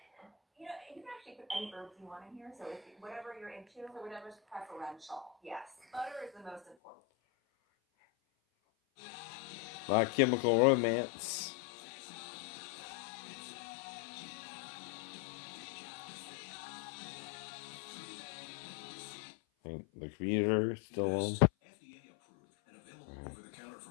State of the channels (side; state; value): right; drops out; at 6.8 s